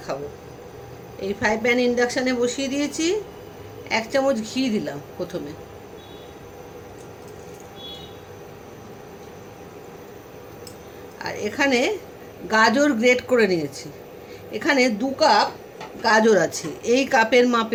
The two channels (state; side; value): identical; both; correlation 1.00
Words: এই ফ্রাই প্যান ইন্ডাকশানে বসিয়ে দিয়েছি। 1 চামচ ঘি দিলাম প্রথমে। আর এখানে গাজর গ্রেট করে নিয়েছি। এখানে 2 কাপ গাজর আছে, এই কাপের